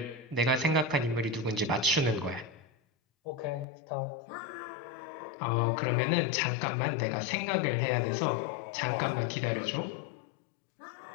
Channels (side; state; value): right; drops out; at 3.7 s